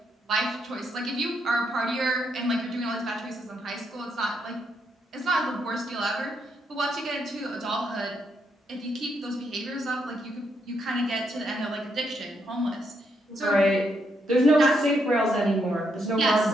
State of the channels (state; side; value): normal; both; correlation 0.77